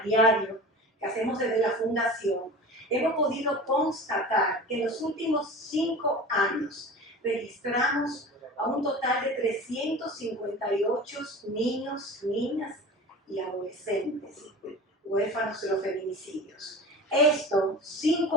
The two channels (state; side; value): normal; both; correlation 0.36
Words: diario que hacemos desde la Fundación, hemos podido constatar que en los últimos 5 años registramos a un total de 358 niños, niñas y adolescentes huérfanos de los feminicidios. Esto sin